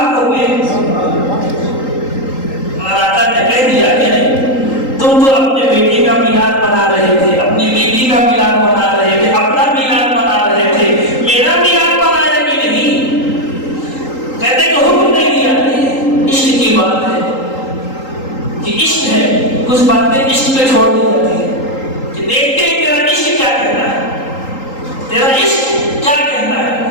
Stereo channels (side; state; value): right; late; 3.8 ms